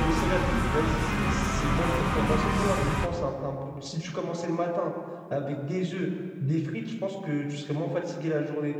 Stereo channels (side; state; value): both; identical; correlation 1.00